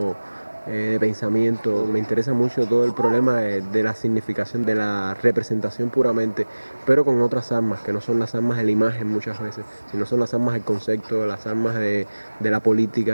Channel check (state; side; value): inverted; both; correlation -1.00